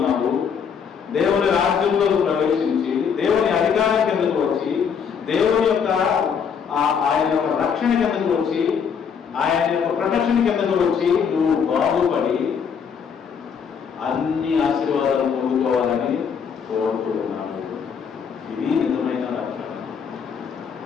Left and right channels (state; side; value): quieter; right; 6.8 dB